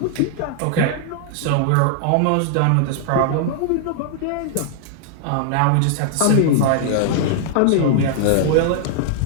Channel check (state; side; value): different; both; correlation -0.01